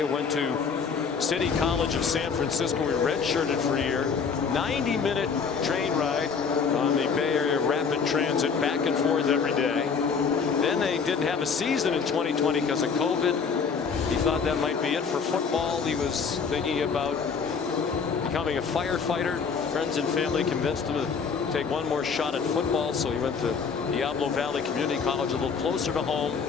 Went to City College of San Francisco. We redshirted for a year. 90-minute train ride on the Bay Area Rapid Transit, back and forth every day. Then they didn't have a season in 2020 because of COVID. He thought that might be it for football. He was thinking about becoming a firefighter. Friends and family convinced him to take one more shot at football, so he went to Diablo Valley Community College, a little closer to home.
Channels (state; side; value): quieter; right; 5.7 dB